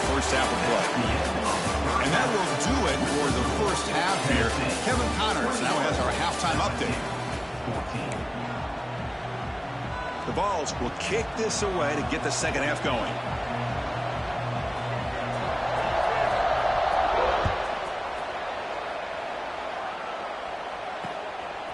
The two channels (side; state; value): both; identical; correlation 1.00